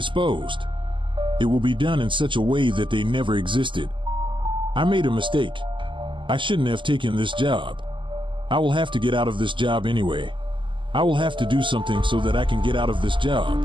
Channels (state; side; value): late; left; 0.24 ms